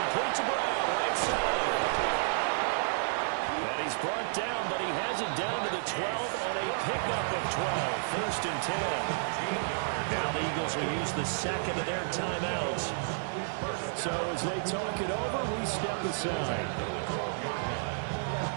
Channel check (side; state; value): left; silent; 57 dB below the other